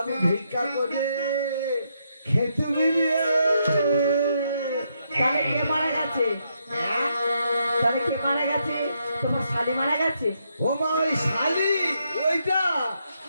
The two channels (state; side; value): inverted; both; correlation -0.78